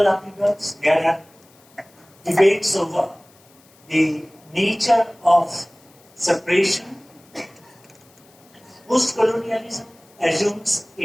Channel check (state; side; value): noise; left; hiss, 29 dB below the sound